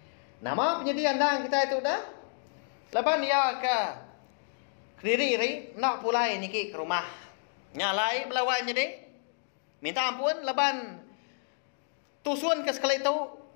nama penyediaan dang kita itu dah laban dia ke diri nak pulai niki ke rumah nyalai balawai jadi minta ampun laban tusun ke sekali itu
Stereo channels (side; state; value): right; silent; digital silence